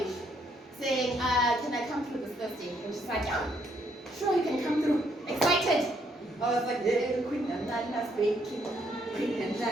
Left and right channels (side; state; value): both; normal; correlation 0.71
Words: saying, can I come through this Thursday? And she's like, yeah, sure, you can come through. Excited. I was like, Queen and Nana's baking. Queen and